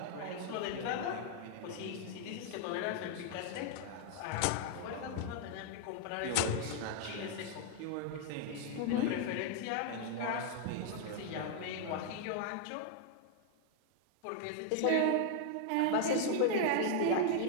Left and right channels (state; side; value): different; both; correlation 0.00